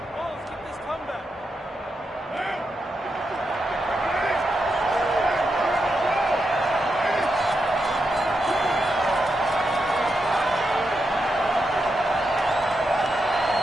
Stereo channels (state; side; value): normal; both; correlation 0.85